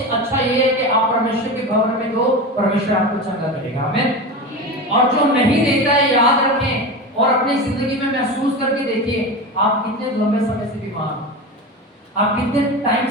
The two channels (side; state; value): both; normal; correlation 0.25